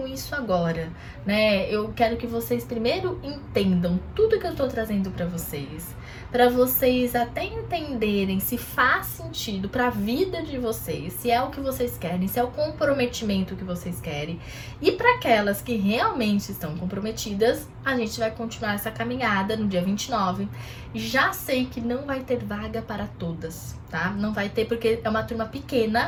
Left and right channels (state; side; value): identical; both; correlation 1.00